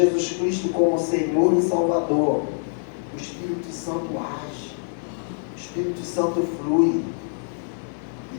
Cristo como Senhor e Salvador, o Espírito Santo age, o Espírito Santo flui, e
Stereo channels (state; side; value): silent; right; digital silence